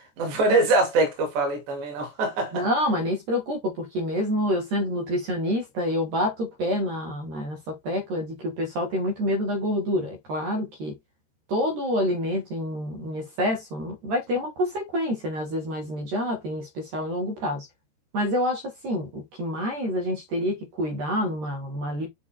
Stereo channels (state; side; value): late; left; 13 ms